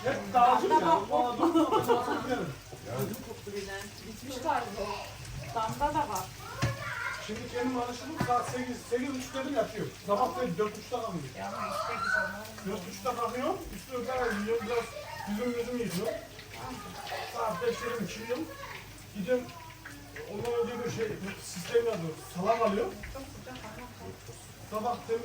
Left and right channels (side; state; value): both; identical; correlation 1.00